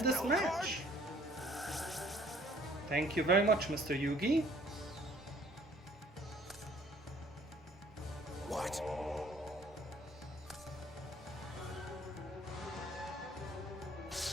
this spell match. card? Thank you very much, Mr. Yugi. What?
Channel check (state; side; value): normal; both; correlation 0.57